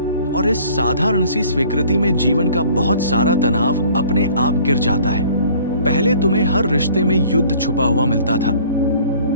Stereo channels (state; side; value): inverted; both; correlation -0.52